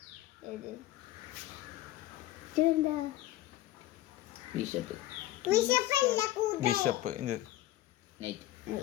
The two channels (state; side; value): quieter; right; 15.2 dB